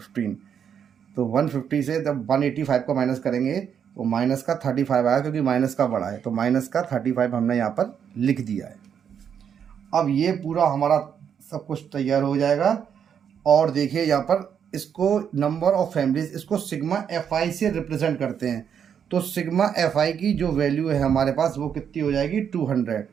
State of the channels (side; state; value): left; quieter; 8.0 dB